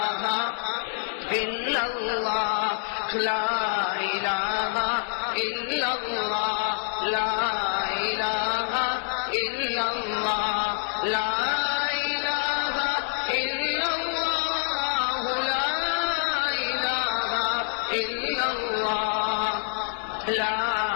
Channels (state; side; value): silent; right; 61 dB below the other